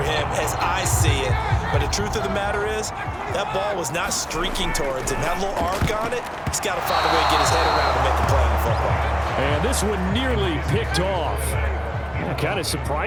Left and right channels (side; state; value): both; identical; correlation 1.00